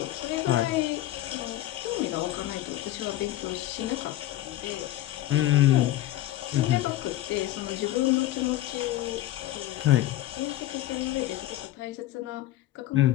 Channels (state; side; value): quieter; right; 14.8 dB